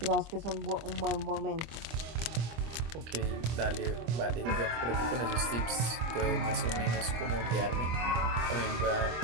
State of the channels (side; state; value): left; late; 25 ms